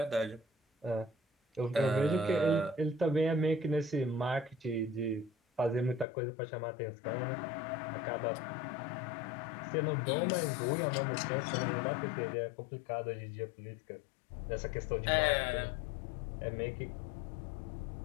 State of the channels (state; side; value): drops out; right; at 6.1 s